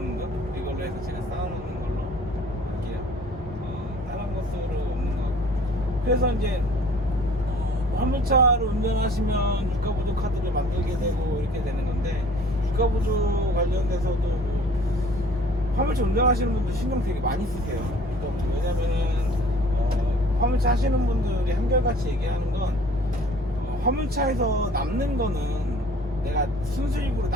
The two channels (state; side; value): normal; both; correlation 0.51